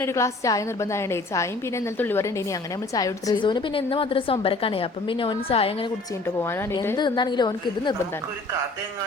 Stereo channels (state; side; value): quieter; right; 3.2 dB